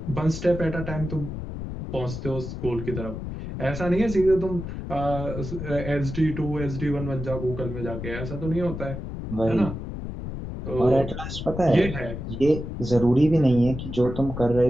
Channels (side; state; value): left; noise; rumble, 7 dB below the sound